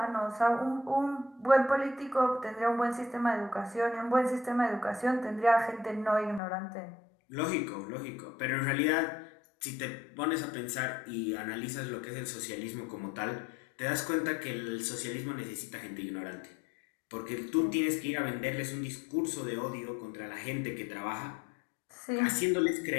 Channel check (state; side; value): drops out; right; at 6.4 s